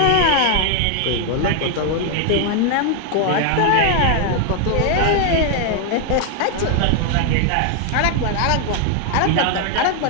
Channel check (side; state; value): both; different; correlation 0.00